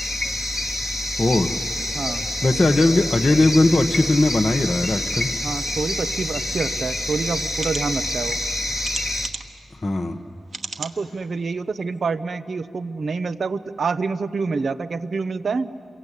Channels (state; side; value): normal; both; correlation 0.91